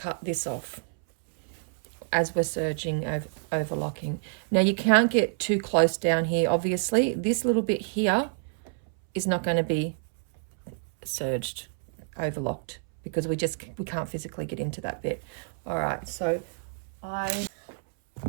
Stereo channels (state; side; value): silent; left; 59 dB below the other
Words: this off as we're serging, overlocking. Now, you can't get too close down here, obviously. This little bit here is not going to be serged, overlocked, because we can't physically get into that bit. All right, so